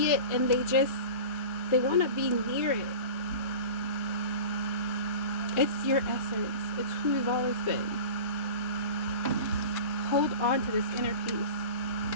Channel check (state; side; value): inverted; both; correlation -0.35